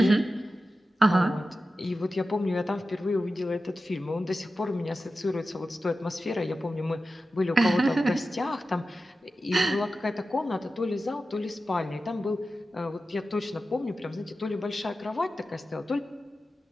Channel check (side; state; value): both; normal; correlation 0.93